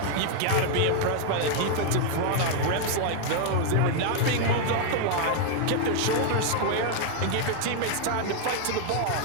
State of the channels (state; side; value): different; both; correlation 0.00